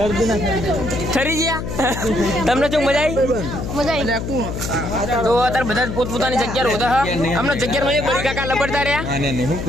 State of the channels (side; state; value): left; noise; hum, 5 dB below the sound